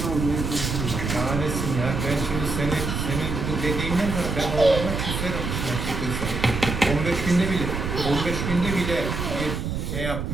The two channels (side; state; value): right; noise; rumble, 3 dB below the sound